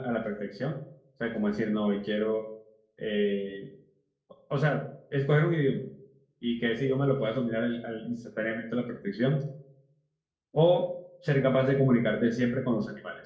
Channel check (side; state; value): both; identical; correlation 1.00